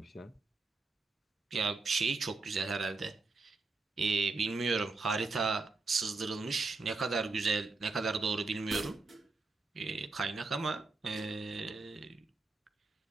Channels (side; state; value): left; quieter; 3.9 dB